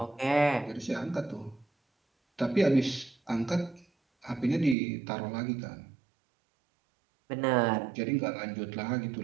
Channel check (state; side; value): drops out; left; at 4.8 s